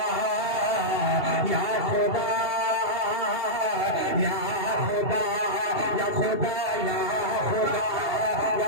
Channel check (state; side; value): late; left; 2.8 ms